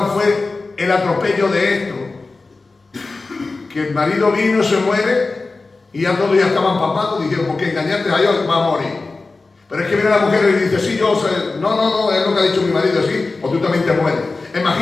fue el atropello de esto. Que el marido vino, se muere, y ya todos ya estaban papados, dijeron, ¿por qué engañarte a Dios? Va a morir. Pero es que viene la mujer y dice, sí, yo sé, no, es lo que ha dicho mi marido, sí, o tú también te mueres.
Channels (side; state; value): right; quieter; 3.7 dB